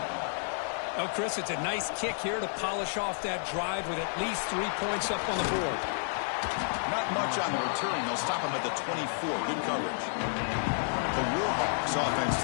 Oh, Chris, it's a nice kick here to polish off that drive with at least 3 points up on the board. Not much on the return. They'll stop him at the 24. Good coverage. The Warhawks offense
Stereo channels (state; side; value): silent; right; 57 dB below the other